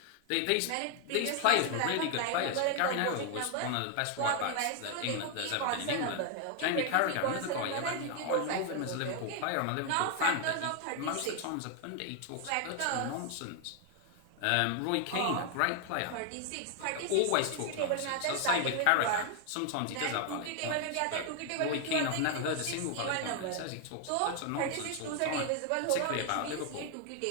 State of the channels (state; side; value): different; both; correlation 0.00